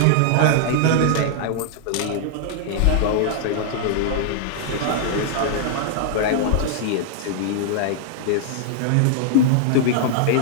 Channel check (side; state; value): both; different; correlation -0.01